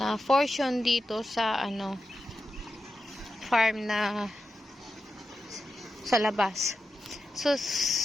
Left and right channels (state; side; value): normal; both; correlation 0.90